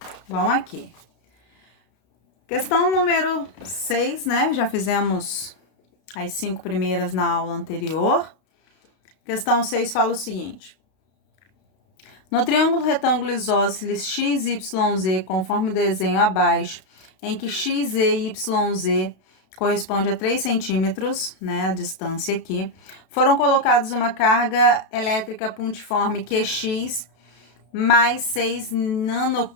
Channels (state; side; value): late; right; 32 ms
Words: vamos aqui. Questão número 6, né? Já fizemos as 5 primeiras na aula anterior. Questão 6 fala o seguinte: no triângulo retângulo isósceles x, y, z, conforme o desenho abaixo, em que x, e y, z corresponde a 3 centímetros, né, a distância aqui, foram colocados uma carga elétrica pontiforme QX mais 6